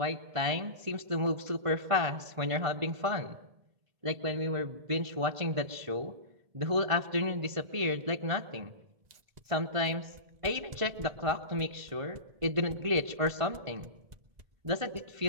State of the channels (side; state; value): left; late; 1.5 ms